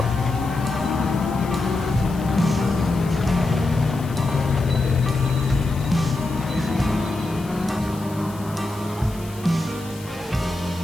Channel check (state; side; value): noise; left; hiss, 20 dB below the sound